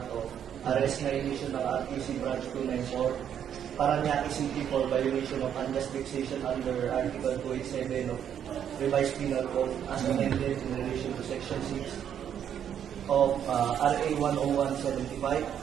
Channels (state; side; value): quieter; left; 9.1 dB